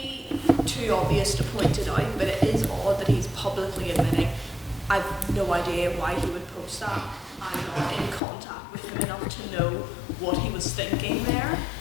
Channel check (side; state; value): right; drops out; at 8.2 s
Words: too obvious to point it out, but it is odd that he's publicly admitting, I've no idea why he would post that. I'm not in contact with him enough to know what he was thinking there.